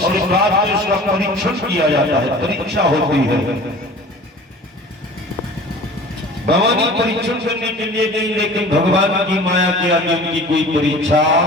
बाद उसका परीक्षण किया जाता है, परीक्षा होती है। भवानी परीक्षण करने के लिए गई, लेकिन भगवान की माया के आगे उनकी कोई परीक्षा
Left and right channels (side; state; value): both; normal; correlation 0.42